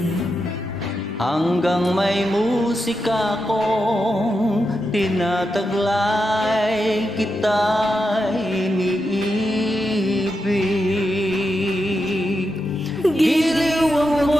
Hanggang may musika kong tinataglay, kita'y iniibig. Giliw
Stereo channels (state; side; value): normal; both; correlation 0.87